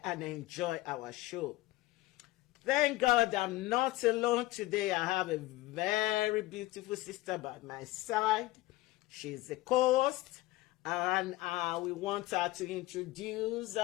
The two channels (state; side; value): quieter; right; 18.4 dB